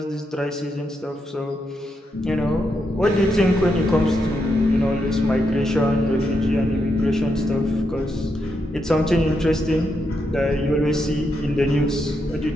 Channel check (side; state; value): both; normal; correlation 0.82